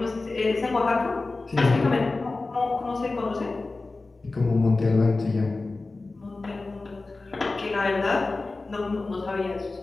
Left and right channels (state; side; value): quieter; right; 3.4 dB